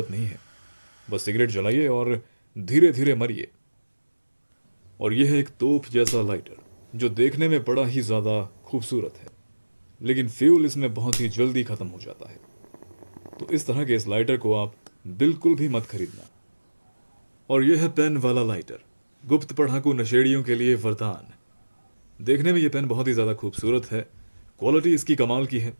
नहीं है। बस सिगरेट जलाइए और धीरे धीरे मरिए। और यह है एक तोप जैसा लाइटर, जो देखने में बड़ा ही ज़्यादा खूबसूरत है, लेकिन फ्यूल इसमें बहुत ही जल्दी ख़त्म हो जाता है। तो इस तरह के इस लाइटर को आप बिल्कुल भी मत खरीदना। और यह है पेन वाला लाइटर, गुप्त पढ़ाकू नशेड़ियों के लिए वरदान। देखने में यह पेन बहुत ही ज़्यादा खूबसूरत है, क्वालिटी इसकी कमाल की है।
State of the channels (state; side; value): inverted; both; correlation -1.00